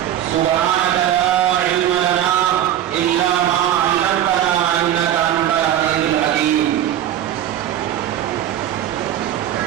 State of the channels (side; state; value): left; quieter; 11.4 dB